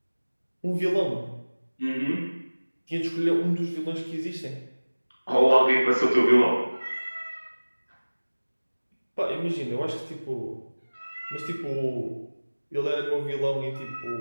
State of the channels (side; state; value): both; inverted; correlation -1.00